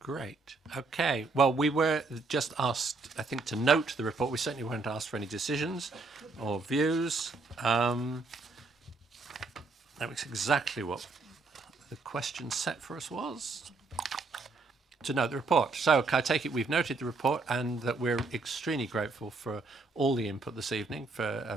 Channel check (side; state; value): left; quieter; 3.8 dB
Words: Great. Okay. Well, we were just asked, I think, to note the report. We certainly weren't asked for any decisions or views. That was exactly what the question set for us was. To note the report. So I take it we've noted the report and that we're extremely grateful for all the input this evening, for